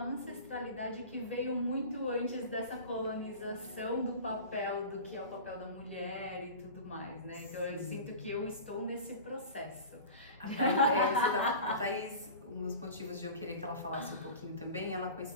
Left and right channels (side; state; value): both; inverted; correlation -0.35